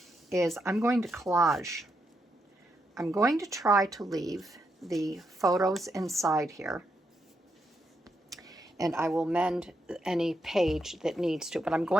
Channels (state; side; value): normal; both; correlation 0.81